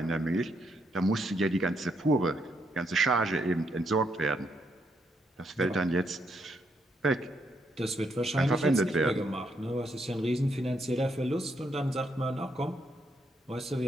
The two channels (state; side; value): normal; both; correlation 0.76